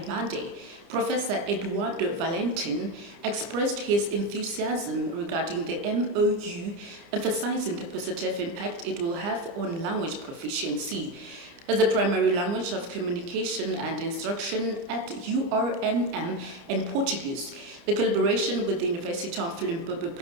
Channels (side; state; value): left; late; 30 ms